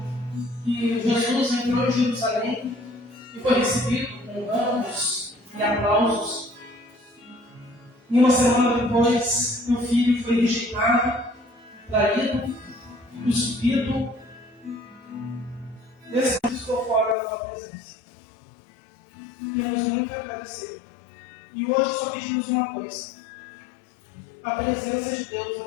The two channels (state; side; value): drops out; right; at 17.2 s